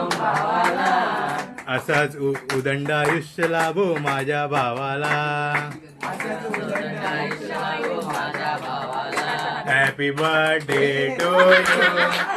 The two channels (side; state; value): both; identical; correlation 1.00